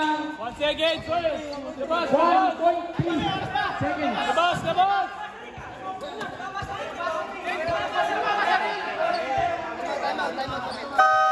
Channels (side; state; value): both; identical; correlation 1.00